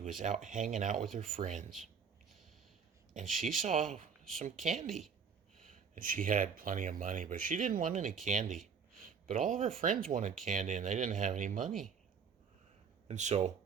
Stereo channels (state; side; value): quieter; left; 6.4 dB